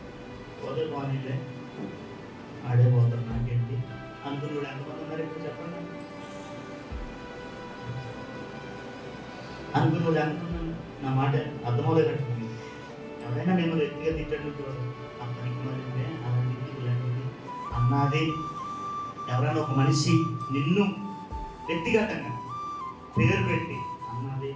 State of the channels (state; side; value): identical; both; correlation 1.00